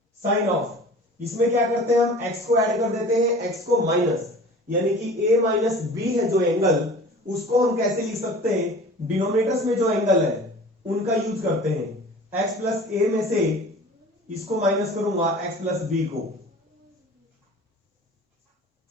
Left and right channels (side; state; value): both; normal; correlation 0.42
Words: sine of, इसमें क्या करते हैं हम x को ऐड कर देते हैं, x को माइनस, यानी कि a माइनस बी है जो एंगल, उसको हम कैसे लिख सकते हैं, डिनोमिनेटर्स में जो एंगल है उनका यूज करते हैं। x प्लस ए में से इसको माइनस करूंगा x प्लस बी को,